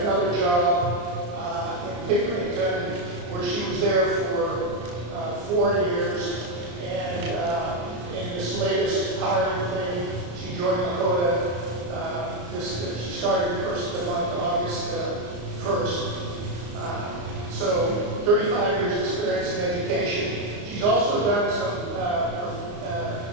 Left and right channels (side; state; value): left; late; 34 ms